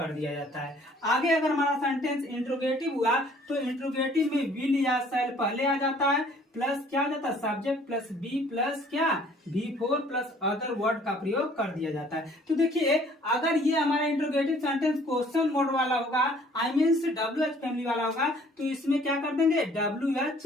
दिया जाता है। आगे अगर हमारा सेंटेंस इंट्रोगेटिव हुआ तो इंट्रोगेटिव में विल या शैल पहले आ जाता है प्लस क्या आ जाता है, सब्जेक्ट प्लस बी प्लस क्या V4 प्लस अदर वर्ड का प्रयोग कर दिया जाता है। तो देखिए अगर ये हमारा इंट्रोगेटिव सेंटेंस क्वेश्चन मोड वाला होगा, आई मीन्स WH फैमिली वाला होगा, तो इसमें क्या कर देंगे,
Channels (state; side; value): normal; both; correlation 0.57